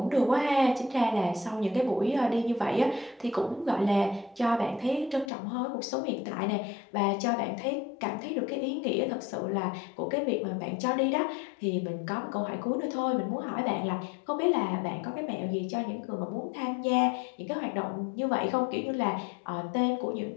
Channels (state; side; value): drops out; right; at 5.2 s